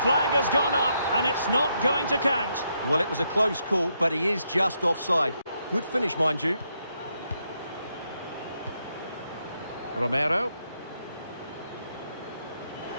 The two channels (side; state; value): both; inverted; correlation -0.78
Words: has gone up, and it's not going to count. Well, it was a close call, but he is just offside. Good finish, mind you. Romero.